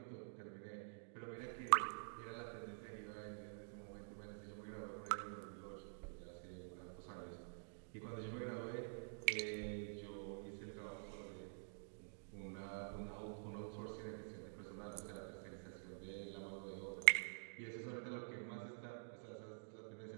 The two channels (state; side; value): silent; left; digital silence